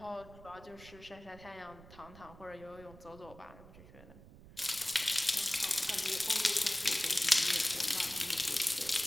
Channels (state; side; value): noise; right; rumble, 19 dB below the sound